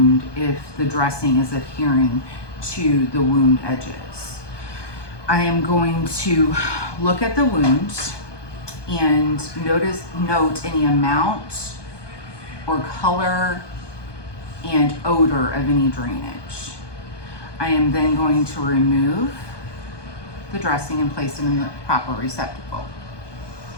if the dressing is adhering to the wound edges. I am going to look at the wound and note any amount or color and odor of any drainage. I am then going to remove the dressing and place it in the proper receptacle.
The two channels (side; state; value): right; late; 1.2 ms